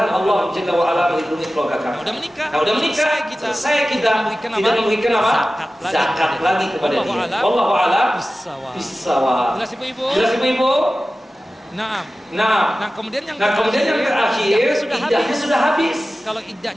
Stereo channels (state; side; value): normal; both; correlation 0.95